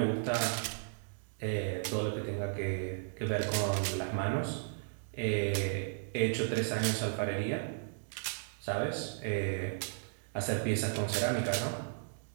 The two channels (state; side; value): silent; left; digital silence